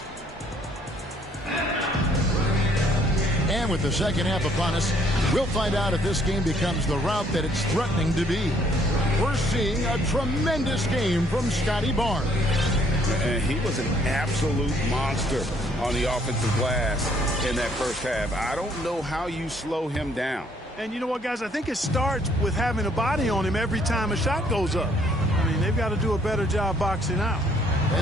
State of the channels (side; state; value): both; normal; correlation 0.65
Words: And with the second half upon us, we'll find out if this game becomes the route that it's threatening to be. We're seeing a tremendous game from Scotty Barnes. And he was an absolute monster on the offensive glass in that first half. I don't know how you slow him down. And you know what, guys? I think it starts with having a body on him every time a shot goes up. I mean, they've got to do a better job boxing out.